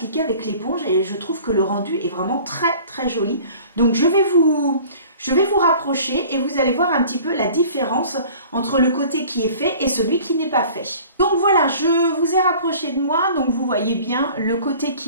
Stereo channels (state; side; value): inverted; both; correlation -0.46